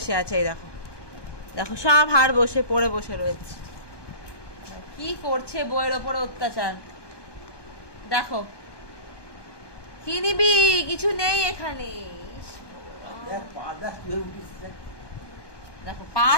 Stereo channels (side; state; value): right; late; 1.2 ms